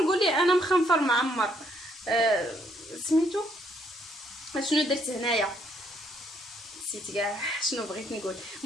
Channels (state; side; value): normal; both; correlation 0.70